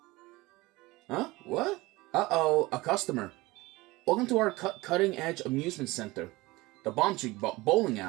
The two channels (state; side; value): quieter; left; 20.9 dB